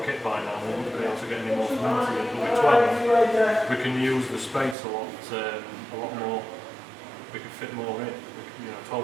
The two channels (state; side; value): drops out; left; at 4.8 s